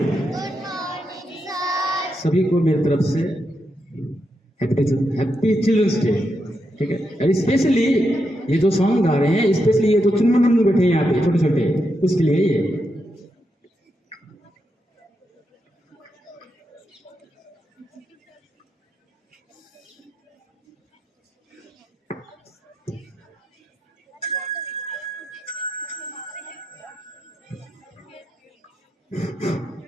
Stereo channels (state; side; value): normal; both; correlation 0.83